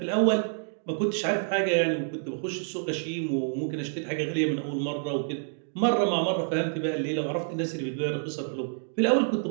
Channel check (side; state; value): left; silent; digital silence